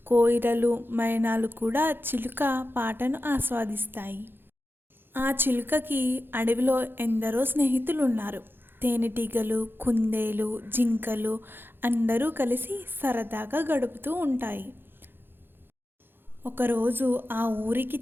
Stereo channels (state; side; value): late; left; 0.10 ms